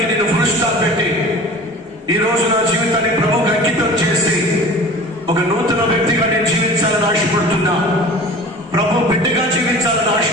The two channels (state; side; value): normal; both; correlation 0.41